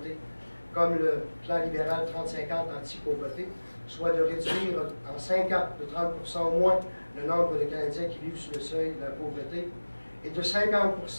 comme le plan libéral 30-50 anti-pauvreté, soit de réduire en 5 ans de 30% au moins le nombre de Canadiens qui vivent sous le seuil de la pauvreté et de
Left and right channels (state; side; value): inverted; both; correlation -1.00